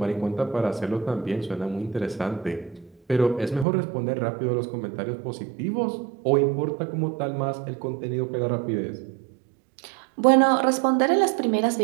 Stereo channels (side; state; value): left; drops out; at 3.7 s